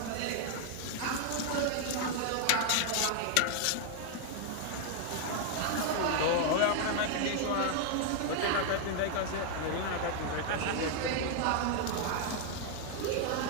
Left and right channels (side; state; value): both; different; correlation 0.00